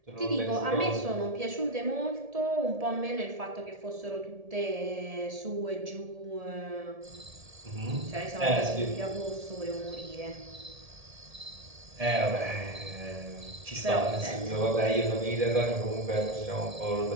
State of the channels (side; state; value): left; late; 1.7 ms